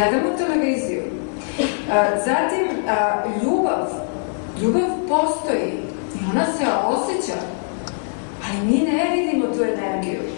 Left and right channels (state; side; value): silent; right; digital silence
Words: televiziju. Zatim, ljubav. Ljubav postoji i ona se osjeća, ali mi ne vidimo tu energiju.